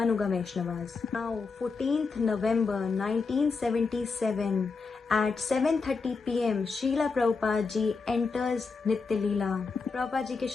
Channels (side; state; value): right; quieter; 4.6 dB